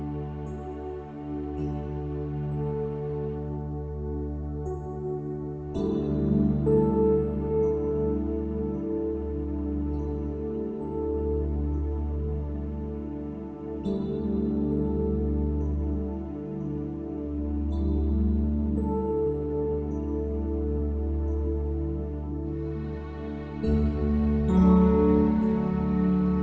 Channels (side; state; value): both; identical; correlation 1.00